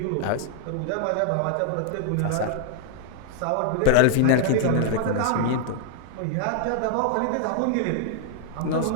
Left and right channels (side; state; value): both; different; correlation 0.00